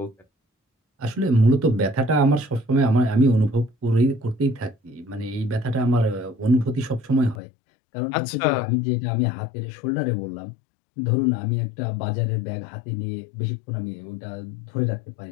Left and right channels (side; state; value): right; drops out; at 7.4 s